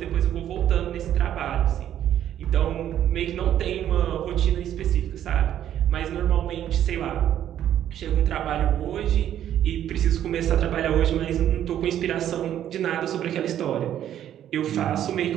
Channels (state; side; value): quieter; left; 10.9 dB